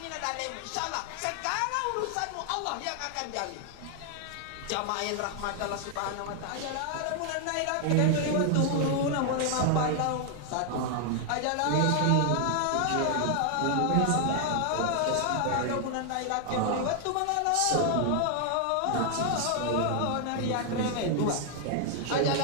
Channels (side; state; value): both; different; correlation 0.00